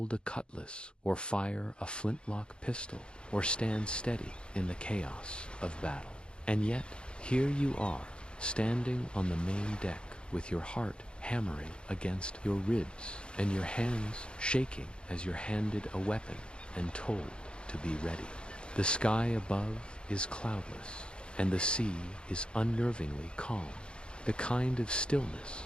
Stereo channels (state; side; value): late; right; 0.053 ms